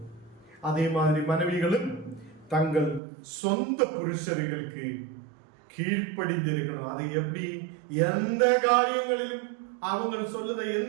அதே மாதிரி மனைவிகளும் தங்கள் சொந்த புருஷர்களுக்கு கீழ்ப்படிந்திருக்கணும். அதை எப்படி? எந்த காரியங்களிலும் அவங்க சொல்லுத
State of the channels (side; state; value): left; drops out; at 3.0 s